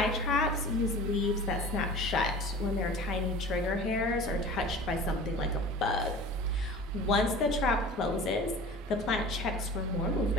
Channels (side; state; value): both; normal; correlation 0.40